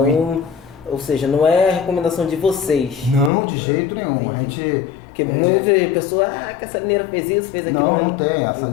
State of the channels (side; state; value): right; drops out; at 3.3 s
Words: ou seja, não é a recomendação de vocês? Não, de jeito nenhum. A gente... Porque muitas pessoas, que a salineira fez isso, fez aquilo. Não tem. A